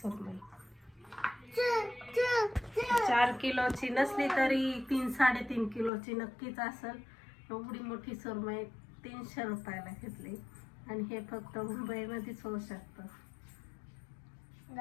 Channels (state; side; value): drops out; right; at 5.9 s